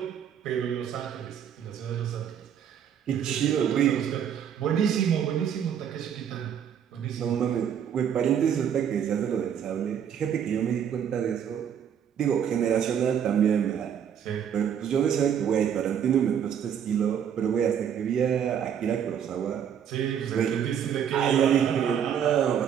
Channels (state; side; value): quieter; left; 8.6 dB